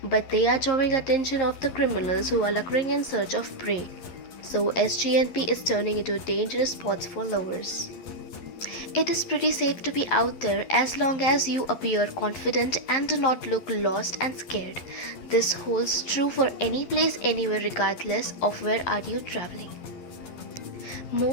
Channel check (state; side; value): late; right; 11 ms